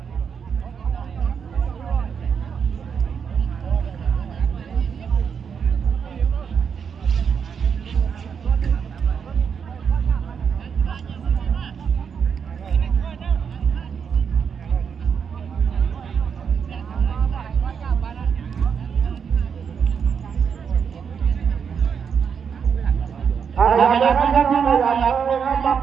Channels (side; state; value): left; quieter; 6.8 dB